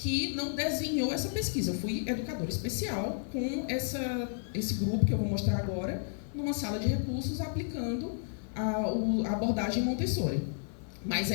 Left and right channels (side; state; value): right; silent; 56 dB below the other